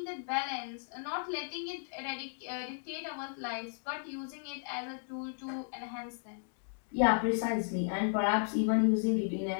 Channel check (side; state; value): right; silent; digital silence